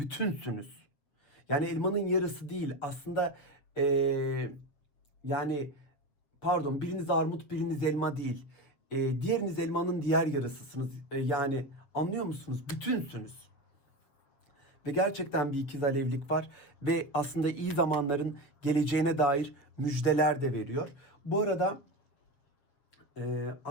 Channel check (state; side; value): late; right; 7.6 ms